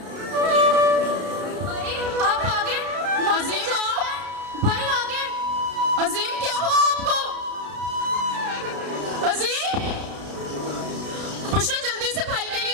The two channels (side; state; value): left; late; 33 ms